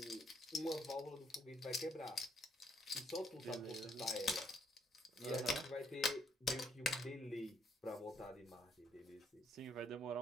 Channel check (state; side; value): normal; both; correlation 0.71